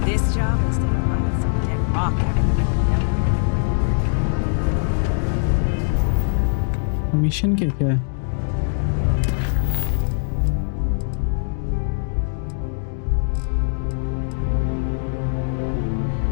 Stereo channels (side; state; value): right; silent; digital silence